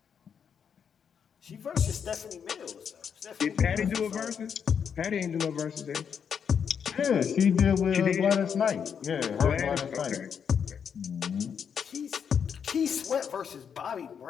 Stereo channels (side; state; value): right; quieter; 7.3 dB